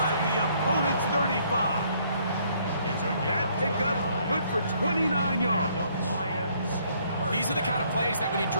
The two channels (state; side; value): inverted; both; correlation -0.66